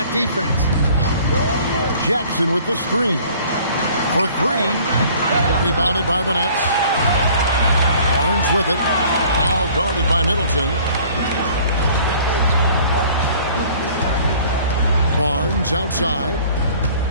defense. Jackson with the screen. For 3. Rebounded by the Nets. Barnes with it. Now guarded by Middleton. Barnes outside.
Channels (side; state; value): both; inverted; correlation -0.52